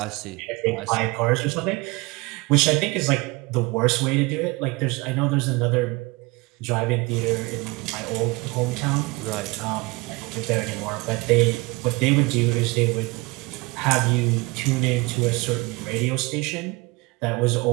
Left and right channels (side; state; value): left; quieter; 25.0 dB